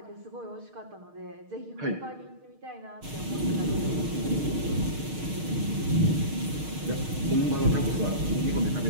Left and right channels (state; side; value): late; left; 6.5 ms